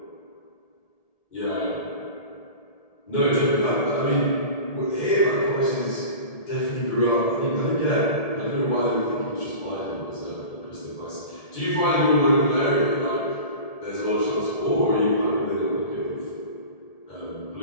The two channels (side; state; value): right; late; 1.7 ms